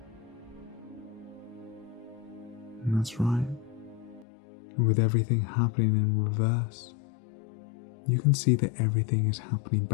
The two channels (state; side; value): drops out; right; at 4.2 s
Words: And that's right. And with everything happening in reverse, you can see that everything is happening